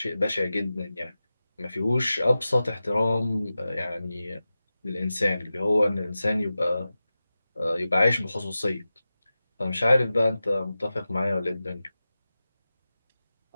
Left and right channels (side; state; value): both; inverted; correlation -0.94